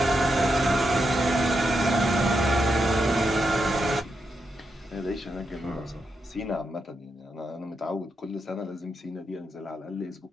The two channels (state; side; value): normal; both; correlation 0.84